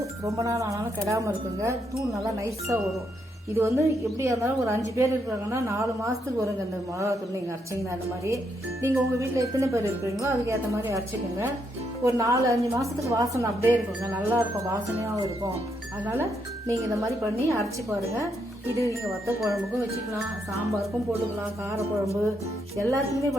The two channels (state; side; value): normal; both; correlation 0.78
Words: ரொம்ப நாள் ஆனாலும் கெடாமல் இருக்குங்க. தூள் நல்லா நைஸாக வரும். இது வந்து எப்படியா இருந்தாலும் ஒரு 5 பேர் இருக்காங்கன்னா 4 மாதத்துக்கு வருங்க இந்த மிளகா தூள் நீங்கள் அரைச்சிங்கன்னா. அந்த மாதிரி நீங்கள் உங்கள் வீட்டில் எத்தனை பேர் இருக்கிறீங்களோ அதுக்கேற்ற மாதிரி அரைச்சிக்கோங்க. ஒரு 4-5 மாதத்துக்கு வாசனை அப்படியே இருக்குங்க, நல்லா இருக்கும், வாசனையாகவும் இருக்கும். அதனால் நீங்கள் இந்த மாதிரி பண்ணி அரைச்சி பாருங்கள். இது நீங்கள் வத்த குழம்புக்கும் வச்சுக்கலாம், சாம்பாருக்கும் போட்டுக்கலாம், காரக்குழம்பு எல்லாத்துக்குமே